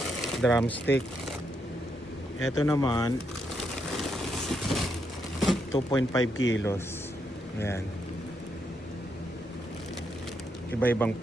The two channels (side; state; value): both; normal; correlation 0.79